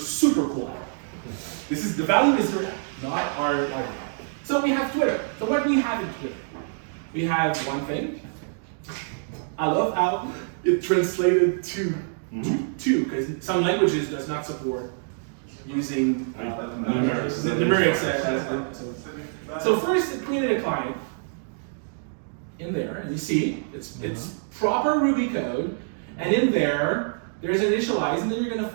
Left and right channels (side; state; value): left; silent; digital silence